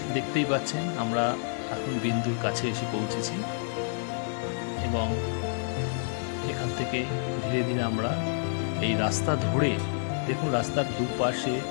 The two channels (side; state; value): right; silent; digital silence